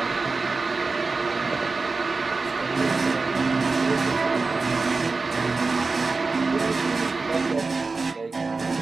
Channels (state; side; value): quieter; left; 4.0 dB